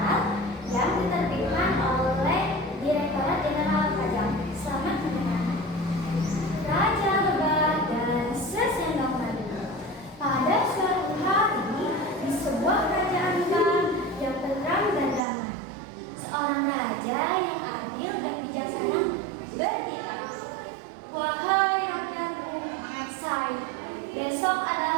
yang diterbitkan oleh Direktorat Jenderal Pajak. Selamat mendengarkan. Raja Lebah dan Sesendok Madu. Pada suatu hari di sebuah kerajaan besar yang tenang dan damai, seorang raja yang adil dan bijaksana berkata, "Wahai rakyatku, besok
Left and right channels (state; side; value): drops out; left; at 15.2 s